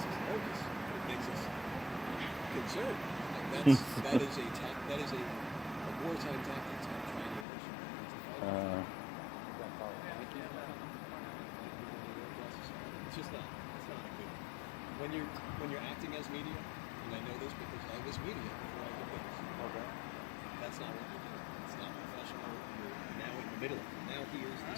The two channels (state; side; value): drops out; right; at 7.5 s